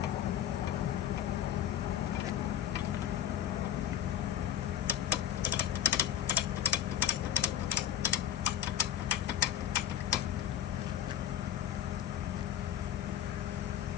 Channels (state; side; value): quieter; right; 10.7 dB